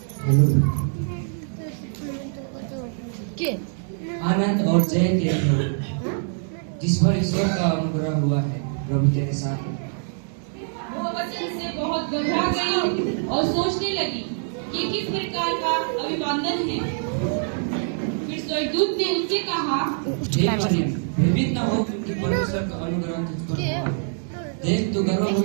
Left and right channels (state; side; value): silent; left; digital silence